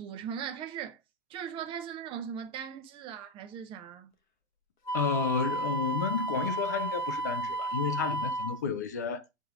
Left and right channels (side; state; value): both; normal; correlation 0.08